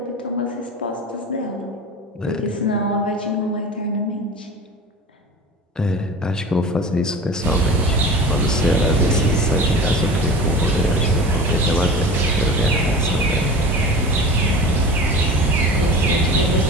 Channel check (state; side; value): normal; both; correlation 0.35